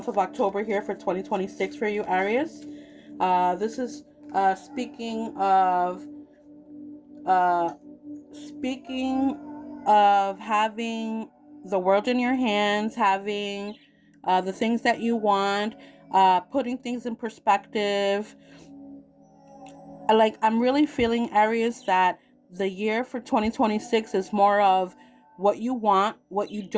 of October here for 2026 for you, Aries. This is speaking of having the world in your hands, having the things that you want, putting things in perspective. I'm really feeling, Aries, that the year for 2026 is more of what you want, what you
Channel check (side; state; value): both; identical; correlation 1.00